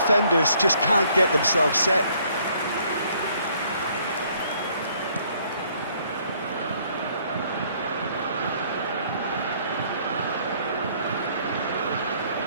just can't get themselves set.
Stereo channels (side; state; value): both; inverted; correlation -0.64